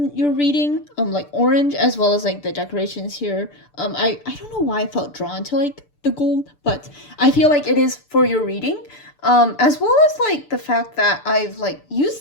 your reading, like orange, as well as like the decorations here. I don't know why I felt drawn to like the gold, but I feel like it is for your reading. As well as like the fact that I've like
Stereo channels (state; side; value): late; right; 6.8 ms